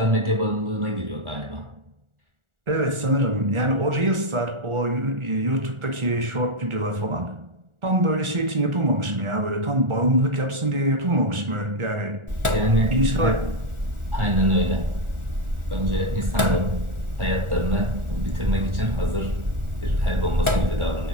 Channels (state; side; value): late; left; 1.4 ms